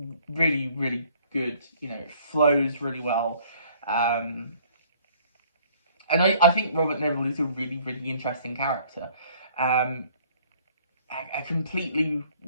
really, really good. You know, it flows really well, and I think Robert Neville is a really, really interesting character. A completely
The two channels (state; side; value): inverted; both; correlation -0.58